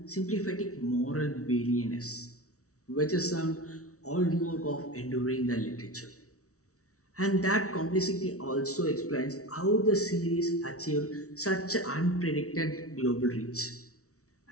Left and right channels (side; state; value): right; late; 0.64 ms